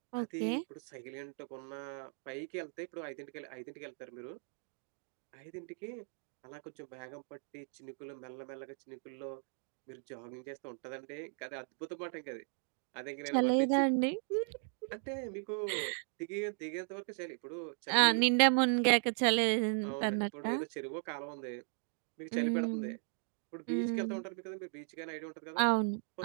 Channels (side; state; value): left; silent; 53 dB below the other